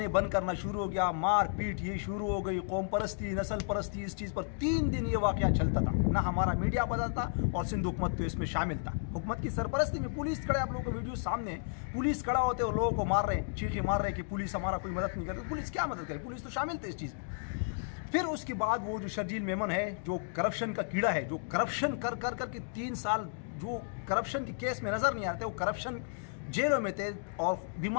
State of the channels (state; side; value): silent; right; digital silence